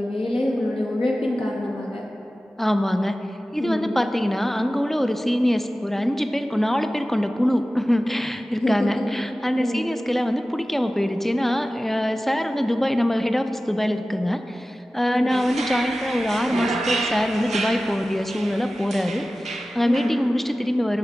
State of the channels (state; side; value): normal; both; correlation 0.96